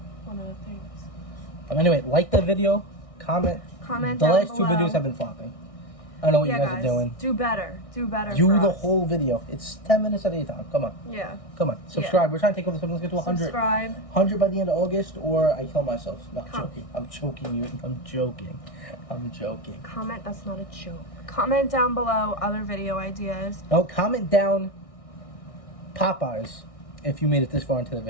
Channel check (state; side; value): late; right; 1.6 ms